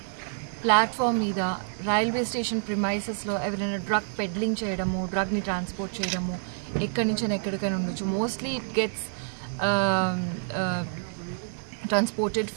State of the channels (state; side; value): silent; left; 60 dB below the other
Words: ప్లాట్ఫామ్ మీద రైల్వే స్టేషన్ ప్రిమైసెస్లో ఎవరైనా డ్రగ్ పెడ్లింగ్ చేయడము, డ్రగ్ని ట్రాన్స్పోర్ట్ చేయడము ఎక్కడి నుంచి ఎక్కడికైనా ఉండొచ్చు. Mostly it gets transported